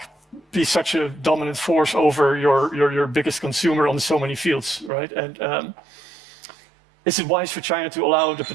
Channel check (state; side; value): drops out; left; at 4.9 s